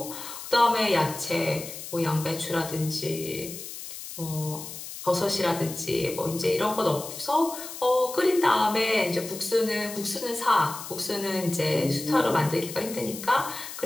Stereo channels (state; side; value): noise; left; hiss, 11 dB below the sound